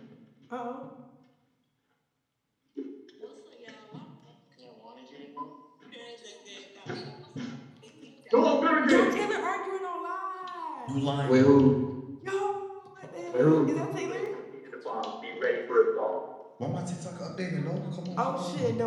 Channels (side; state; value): both; identical; correlation 1.00